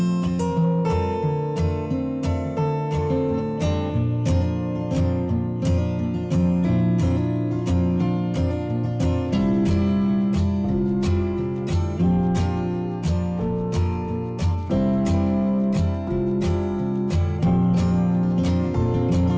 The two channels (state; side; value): identical; both; correlation 1.00